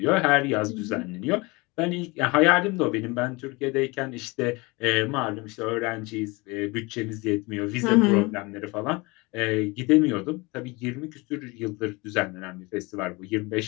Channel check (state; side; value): quieter; right; 25.2 dB